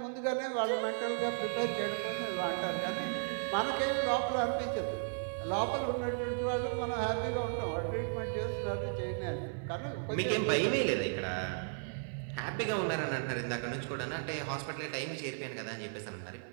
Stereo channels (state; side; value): silent; left; 54 dB below the other